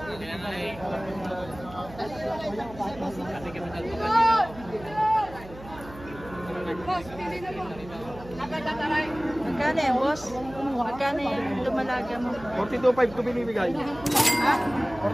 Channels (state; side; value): noise; right; hum, 17 dB below the sound